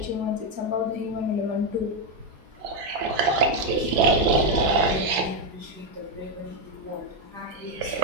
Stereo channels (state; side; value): late; left; 4.6 ms